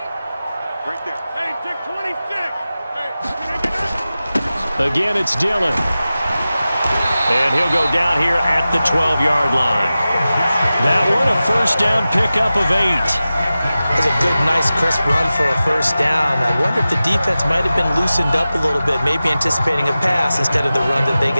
Right there. Hey, Dick 26. Again, it's Dillon. And he'll go down here at the 12-yard line. That one, a first down pickup of 8. That's a good, nice, crisp run for a first down. I wonder if the defense might have been loosened up a little bit, maybe anticipating a pass instead of the run that they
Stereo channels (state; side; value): inverted; both; correlation -0.95